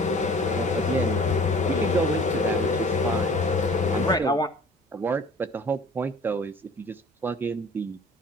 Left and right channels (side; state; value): both; normal; correlation 0.48